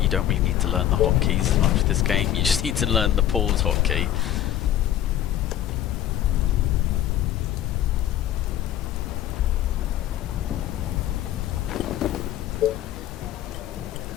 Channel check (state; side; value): quieter; right; 12.0 dB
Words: you don't really need to learn the hotkeys as much for this game. You just need to learn the pause hotkey.